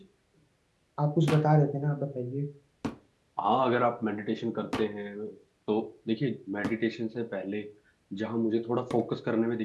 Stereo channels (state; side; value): identical; both; correlation 1.00